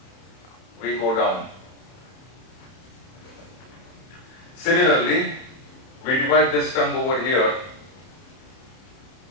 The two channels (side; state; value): right; late; 31 ms